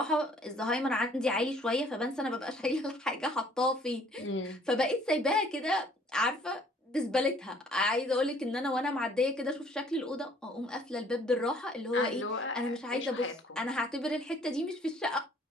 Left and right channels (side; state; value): both; normal; correlation 0.59